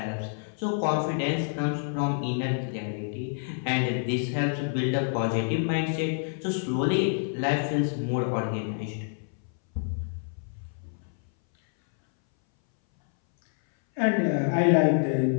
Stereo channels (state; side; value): silent; right; 60 dB below the other